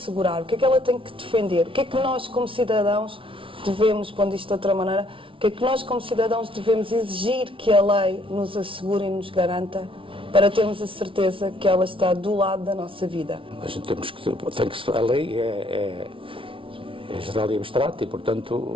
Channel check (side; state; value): left; late; 0.25 ms